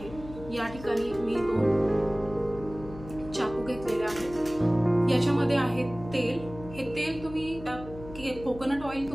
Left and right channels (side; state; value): left; noise; hum, 14 dB below the sound